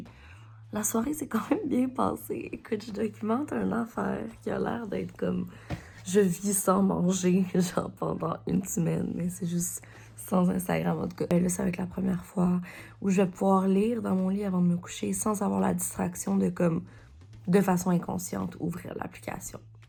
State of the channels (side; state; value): both; identical; correlation 1.00